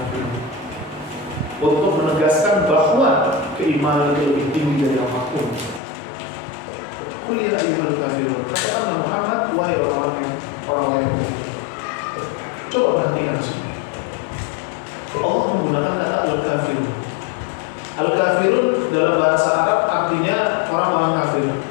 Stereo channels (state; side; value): drops out; right; at 5.8 s